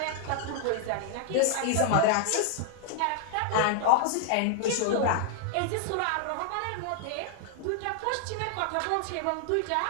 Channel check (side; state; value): both; different; correlation -0.01